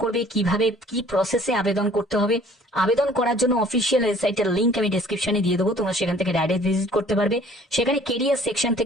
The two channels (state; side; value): normal; both; correlation 0.54